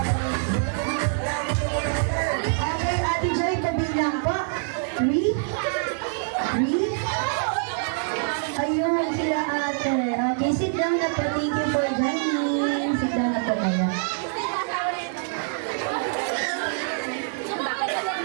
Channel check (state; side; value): silent; left; digital silence